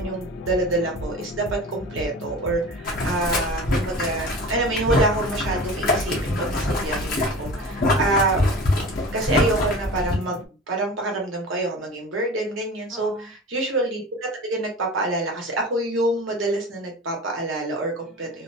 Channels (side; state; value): both; normal; correlation 0.36